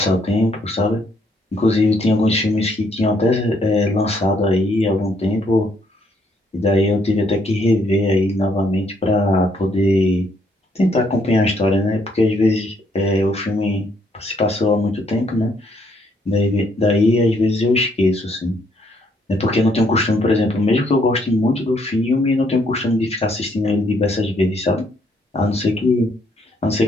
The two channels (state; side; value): normal; both; correlation 0.69